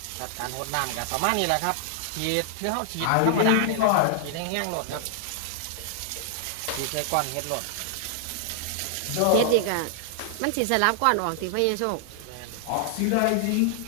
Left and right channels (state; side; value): different; both; correlation -0.01